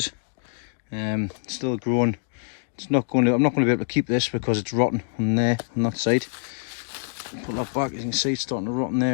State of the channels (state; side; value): silent; right; digital silence